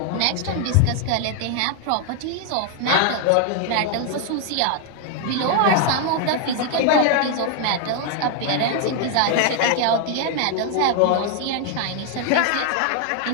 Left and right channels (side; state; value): both; different; correlation 0.00